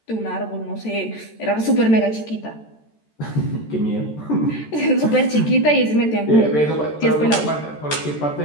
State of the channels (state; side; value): late; right; 13 ms